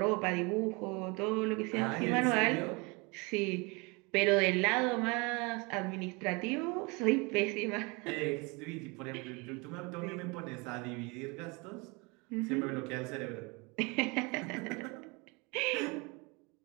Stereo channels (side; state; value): left; quieter; 28.1 dB